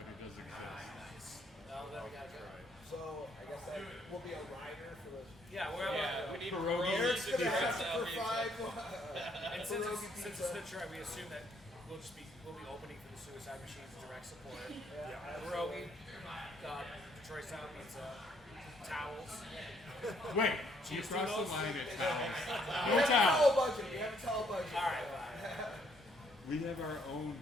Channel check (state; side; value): normal; both; correlation 0.68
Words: it does exist. Oh, then we gotta try. So I guess that will be a rider for the. We need Pierogi. Eric's gonna Detroit have to style provide And since pierogi it's pizza. Detroit, we assume that we'll be opening for the Suicide Machines direct support. Pierogi, Detroit style pizza, towels. Wait, you crossed the line at towels. We No have a towels. towel budget. We have a towel budget. All right, fine. We have our own